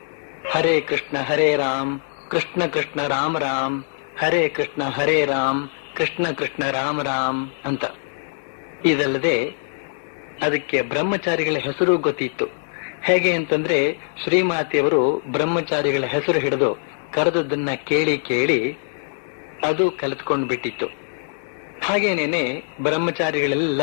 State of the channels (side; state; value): right; silent; digital silence